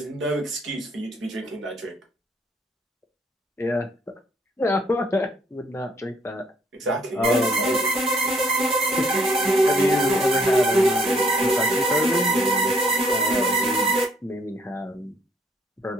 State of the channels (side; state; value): both; normal; correlation 0.66